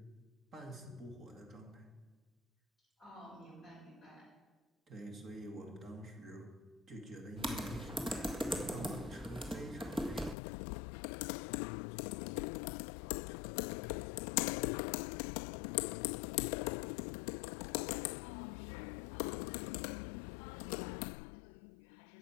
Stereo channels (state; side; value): drops out; right; at 10.4 s